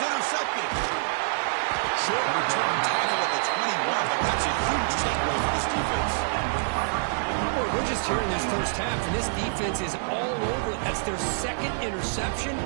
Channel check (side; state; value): left; silent; digital silence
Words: Short return tackle at the 21, but that's a huge takeaway for this defense. Boy, we're just here in this first half, and this defense is all over. That's their second interception.